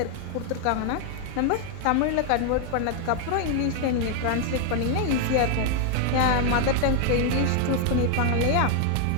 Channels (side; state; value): both; different; correlation 0.01